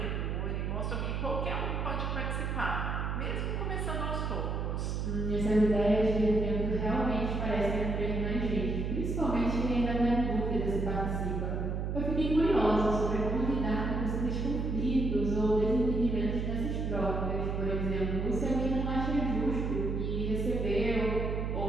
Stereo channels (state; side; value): noise; right; hum, 1 dB below the sound